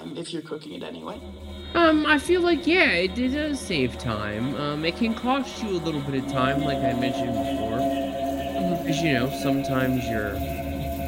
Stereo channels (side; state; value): both; identical; correlation 1.00